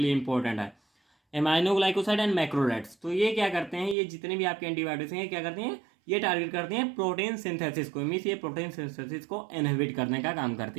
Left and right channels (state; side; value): drops out; left; at 4.0 s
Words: लिए इंपॉर्टेंट है। एमाइनोग्लाइकोसाइड एंड मैक्रोलेट्स, तो ये क्या करते हैं, ये जितने भी आपके एंटीबायोटिक्स हैं क्या करते हैं, ये टारगेट करते हैं प्रोटीन सिंथेसिस को, मीन्स ये प्रोटीन सिंथेसिस को इनहिबिट करने का काम